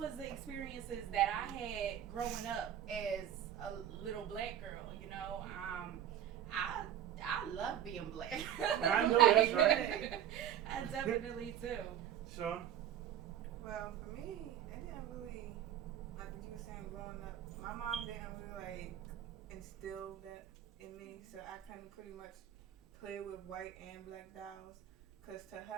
the experiences that I had growing up as a little black girl, you know. I love being black. I know that's right. I definitely do. Sean? Well, for me, it didn't really, like what you were saying growing up, my mom didn't really like instill that in me, so I couldn't pretty much play with white and black dolls, because to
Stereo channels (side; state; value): left; quieter; 10.6 dB